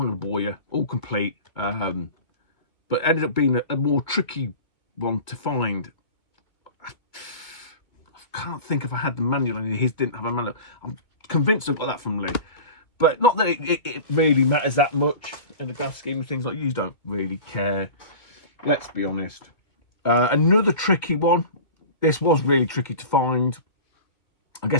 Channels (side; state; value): right; late; 2.2 ms